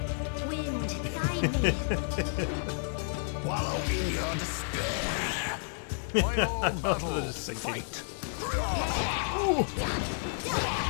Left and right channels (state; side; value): silent; right; 57 dB below the other